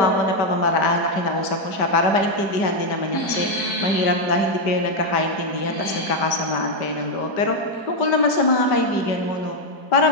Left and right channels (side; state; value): right; late; 5.1 ms